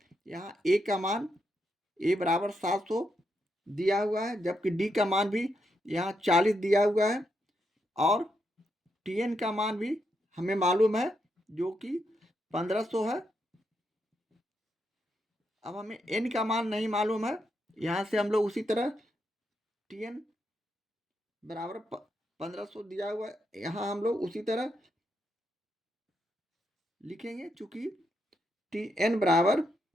यहाँ ए का मान ए बराबर 700 दिया हुआ है, जबकि डी का मान भी यहाँ 40 दिया हुआ है और टी एन का मान भी हमें मालूम है जो कि 1500 है। अब हमें एन का मान नहीं मालूम है, यहाँ से हम लोग उसी तरह टी एन बराबर 1500 दिया हुआ है, यहाँ हम लोग उसी तरह लिखेंगे। चूंकि टी एन बराबर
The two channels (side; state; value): both; normal; correlation 0.81